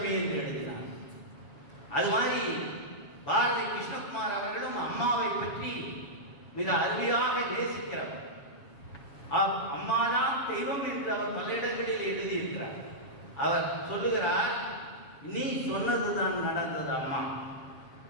என்று எழுதினார். அது மாதிரி பாரதி கிருஷ்ணகுமார் அவர்களும் அம்மாவை பற்றி மிக அருமையாக நேசிக்கிறவர். அம்மாதான் தெய்வம் என்று அவர் பல இடங்களில் எழுதியிருக்கிறார். அவர் சொல்லுகிறார், நீ சொன்னதுதான் நடந்தது அம்மா.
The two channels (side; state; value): right; late; 7.2 ms